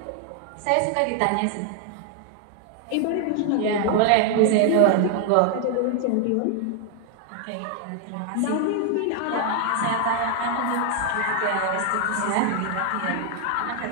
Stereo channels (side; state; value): both; different; correlation 0.00